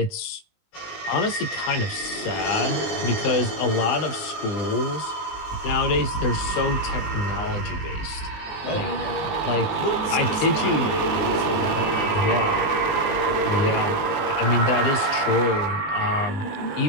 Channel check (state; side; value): late; right; 19 ms